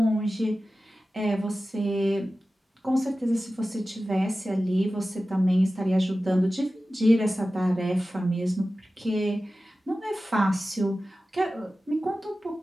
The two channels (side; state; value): both; normal; correlation 0.95